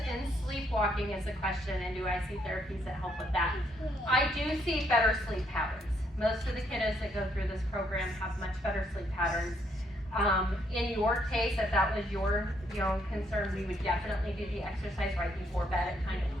sleepwalking is a question, and do I see therapies that help with that? I do see better sleep patterns. Most of the kiddos that go through this program have much better sleep patterns. In your case, if that was your concern, we would definitely do the exercise right before bed. It kind of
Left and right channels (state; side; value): normal; both; correlation 0.72